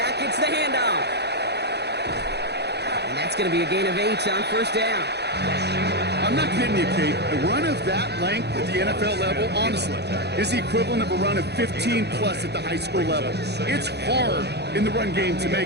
going to be a gain of 8 on first down. I'm not kidding you, Kate. A run of that length at the NFL level, honestly, is the equivalent of a run of 15-plus at the high school level. It's hard in the run game to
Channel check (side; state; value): left; late; 0.48 ms